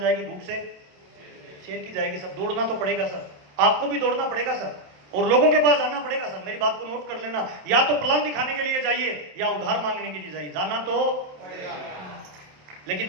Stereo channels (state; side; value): late; left; 27 ms